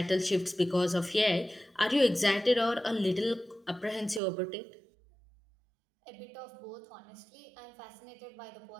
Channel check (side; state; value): left; drops out; at 4.2 s